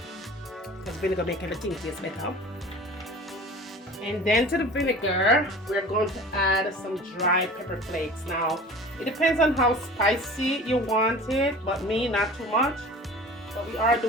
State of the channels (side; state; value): both; normal; correlation 0.41